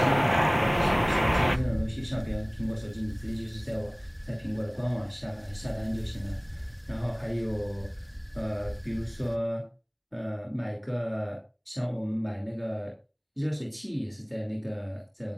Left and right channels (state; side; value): identical; both; correlation 1.00